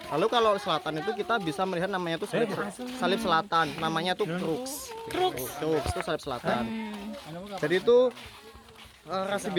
lalu kalau selatan itu kita bisa melihat namanya itu salib selatan. Namanya tuh Crux. Crux. Crux itu salib selatan. Jadi itu rasi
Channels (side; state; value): both; identical; correlation 1.00